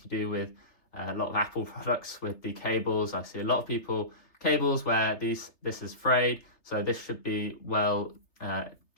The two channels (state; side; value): late; right; 3.3 ms